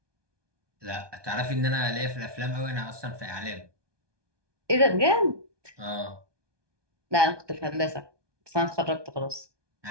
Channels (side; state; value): left; late; 1.2 ms